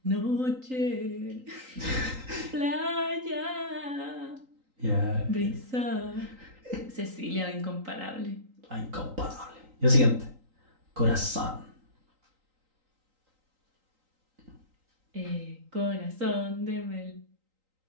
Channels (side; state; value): left; late; 3.9 ms